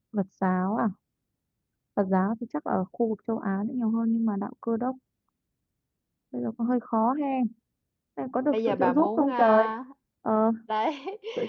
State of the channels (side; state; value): both; identical; correlation 1.00